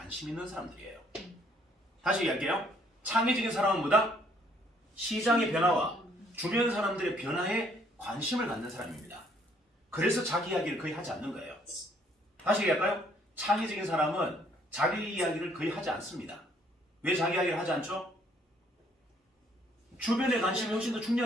있는 사람들이에요. 다시 얘기할게요. 창의적인 사람은 뭐다? 시장의 변화와 주변 사람들의 변화에 관심을 갖는 사람입니다. 그래서 자기 이야기를 거의 하지 않는 거예요. 다시 얘기할까요? 창의적인 사람은 자기 이야기를 거의 하지 않습니다. 왜 자기 이야기를 하지 않죠? 주변의 관심이 훨씬 더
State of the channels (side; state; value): both; normal; correlation 0.65